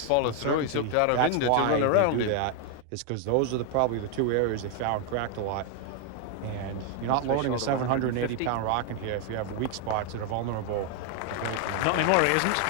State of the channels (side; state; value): both; different; correlation 0.00